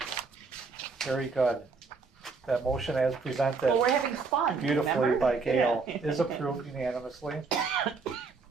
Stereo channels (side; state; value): left; quieter; 4.5 dB